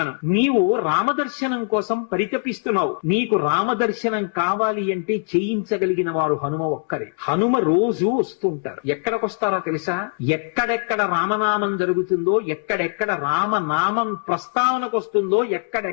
నీవు రామదర్శనం కోసం పరితపిస్తున్నావు. నీకు రామదర్శనం కావాలి అంటే చేయించగలిగిన వారు హనుమ ఒక్కరే. హనుమ రోజు వస్తుంటారు. ఎక్కడికొస్తారో తెలుసా? ఎక్కడెక్కడ రామనామం జరుగుతుందో, ఎక్కడెక్కడ రామనామం ప్రస్తావనకు వస్తుందో,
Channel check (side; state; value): right; silent; 64 dB below the other